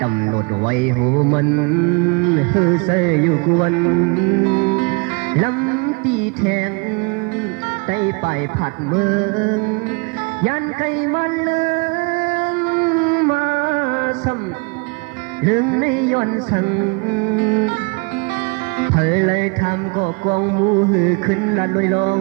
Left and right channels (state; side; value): quieter; left; 30.7 dB